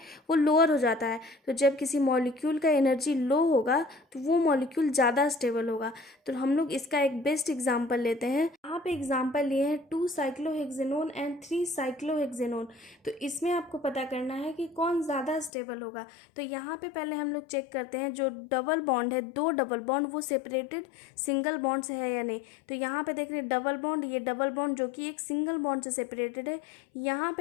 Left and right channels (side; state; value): right; drops out; at 15.5 s